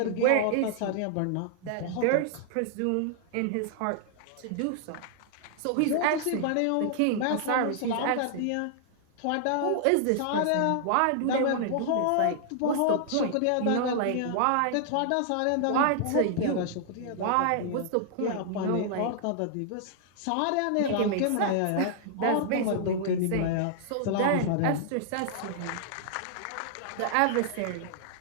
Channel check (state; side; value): different; both; correlation -0.01